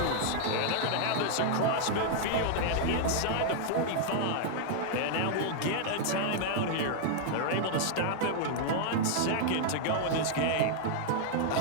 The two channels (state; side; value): different; both; correlation -0.01